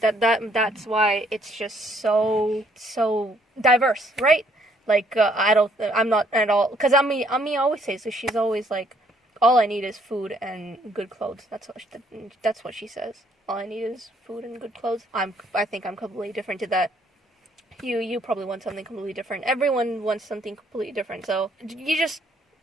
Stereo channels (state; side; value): normal; both; correlation 0.66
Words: that's why it's just so diverse, right? Like, I'm not at all, because Ami always says, so she's always like, all I need is food and good clothes. That's what she says. All I need is food and good clothes. I think I'm completely different to that. You probably want something completely different. Everyone wants something completely different. So